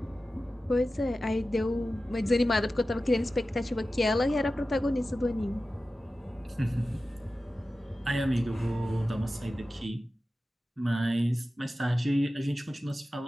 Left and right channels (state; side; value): normal; both; correlation 0.94